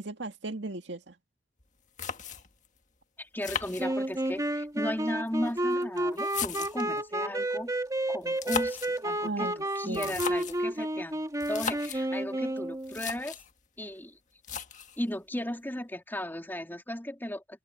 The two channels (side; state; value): both; normal; correlation 0.64